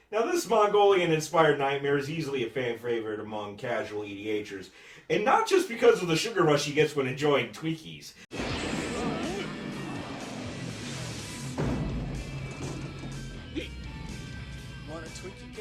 Now, this Mongolian-inspired nightmare is easily a fan favorite among casual EDHers, and not just because of the sugar rush he gets when enjoying Twinkies. Want a Twinkie,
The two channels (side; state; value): both; identical; correlation 1.00